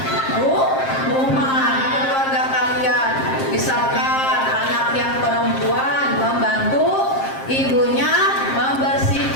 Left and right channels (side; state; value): right; late; 7.5 ms